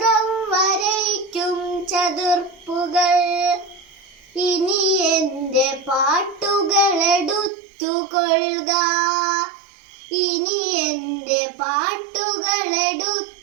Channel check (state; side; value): drops out; left; at 7.5 s